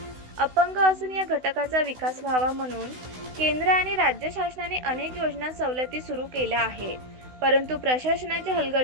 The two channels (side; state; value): left; late; 16 ms